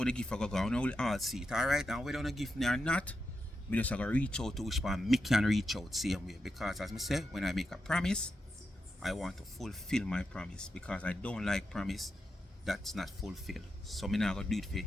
the gift I go on. I will all see it. Alright, and whether you don't give me or not, me just gonna reach out to which one me can reach out same way. Because as I say, when I make a promise, I want to fulfill my promise. Because I don't like promise that's not fulfilled. So me not gonna do it for you.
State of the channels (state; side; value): normal; both; correlation 0.87